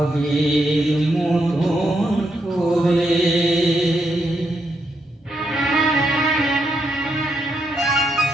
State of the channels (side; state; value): both; normal; correlation 0.80